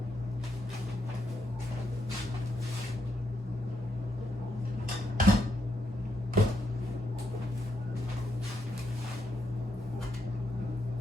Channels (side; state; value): both; normal; correlation 0.79